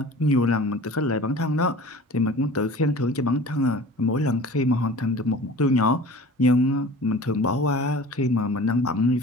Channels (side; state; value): both; normal; correlation 0.41